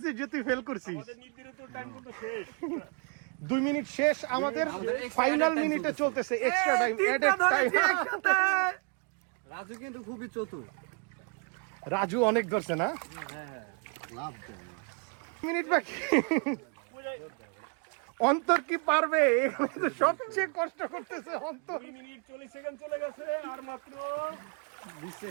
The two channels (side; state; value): left; quieter; 36.4 dB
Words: যে তুই ফেল করছিস? আমাদের নির্ধারিত টাইম কিন্তু শেষ। 2 মিনিট শেষ আমাদের। ফাইনাল মিনিটে চলতেছে extra time, added time. Raju কিন্তু খুবই চতুর। রাজু অনেক ধরছে না? মিনিট বাকি। অন্তর কি পারবে? এখানে তো সবচেয়ে কষ্ট করতেছে অন্তর। 2 মিনিট 40 সেকেন্ড চলে গেছে, আর মাত্র 20